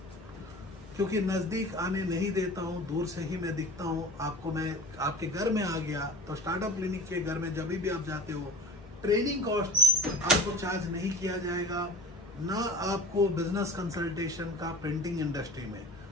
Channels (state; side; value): normal; both; correlation 0.39